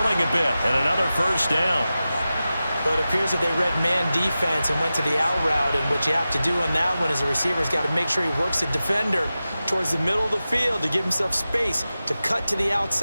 a bit, and another first down. But it appears that they read man defense and went to the out route, and what you have to do on that one is the receiver's got to make sure he works the defender towards the middle of the field to give himself space to cut to the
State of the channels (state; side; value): inverted; both; correlation -0.94